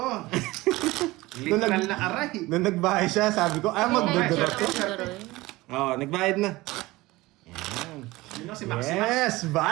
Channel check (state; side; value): quieter; left; 19.9 dB